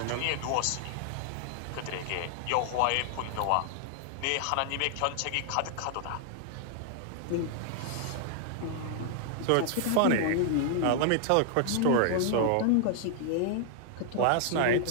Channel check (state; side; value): different; both; correlation 0.00